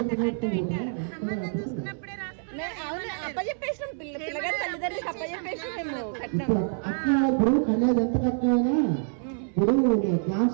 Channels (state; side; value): silent; left; 60 dB below the other